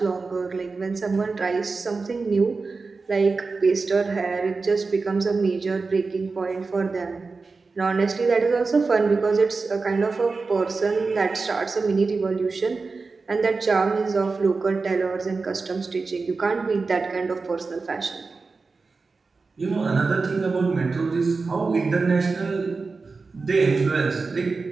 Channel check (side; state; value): left; quieter; 4.2 dB